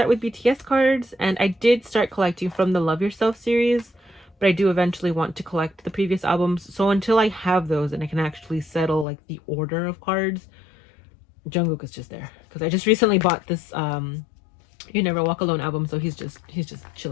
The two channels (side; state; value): right; drops out; at 9.1 s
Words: with BTS cards, and I did start collecting from the Love Yourself series, but I do eventually want to collect the previous albums. So until I have those and I can actually settle like the order of cards, Jungkook is just there because I just recently bought this You Never Walk Alone album, so he's just